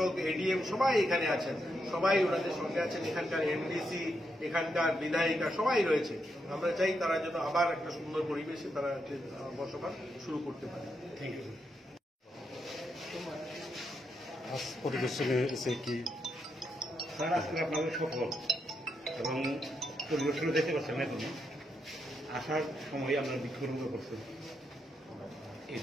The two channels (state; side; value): normal; both; correlation 0.81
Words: এডিএম সবাই এখানে আছেন, সবাই ওনাদের সঙ্গে আছেন, এখানকার এমডিসি, এখানকার বিধায়িকা সবাই রয়েছে। আমরা চাই তারা যেন আবার একটা সুন্দর পরিবেশে তারা বসবাস শুরু করতে পারে। Thank you. আজ পরিদর্শনে এসে কি স্যার, আজকে আপনাদের সফল এবং পরিদর্শনে দেখতে পাচ্ছেন এখন আসার সময় আপনারা বিক্ষোভ করছেন, এই